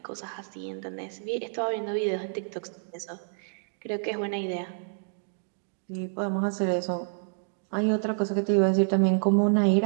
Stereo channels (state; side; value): silent; left; digital silence